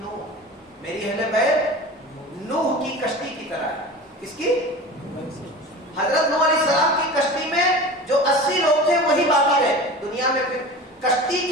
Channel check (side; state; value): both; normal; correlation 0.34